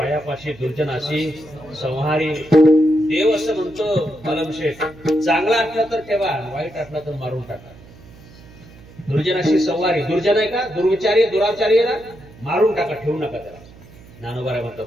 दुर्जनाशी संहारी. देव असं म्हणतो कलमशेठ, चांगला असला तर ठेवा, वाईट असला तर मारून टाका. दुर्जनाशी संहारी. दुर्जन आहे का? दुर्विचारी दुराचारी आहे ना, मारून टाका, ठेवू नका त्याला. ज्ञानोबा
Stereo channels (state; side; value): noise; right; hum, 21 dB below the sound